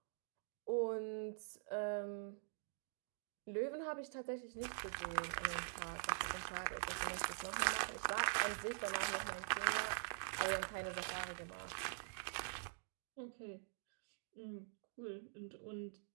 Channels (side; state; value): left; silent; digital silence